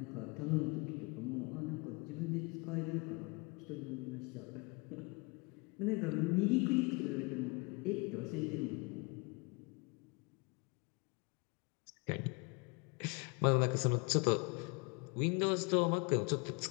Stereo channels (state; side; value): quieter; right; 30.0 dB